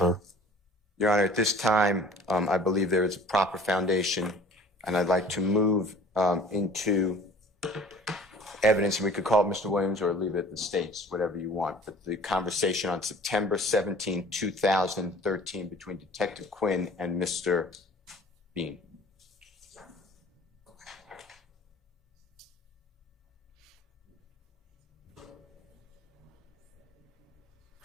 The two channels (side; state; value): both; normal; correlation 0.46